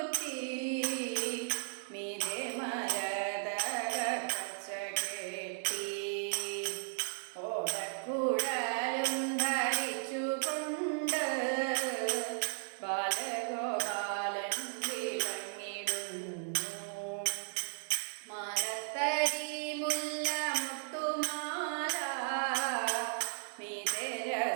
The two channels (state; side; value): silent; left; digital silence